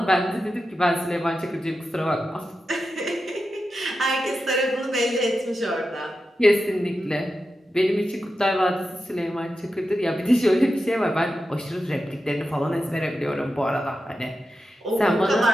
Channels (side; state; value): both; normal; correlation 0.90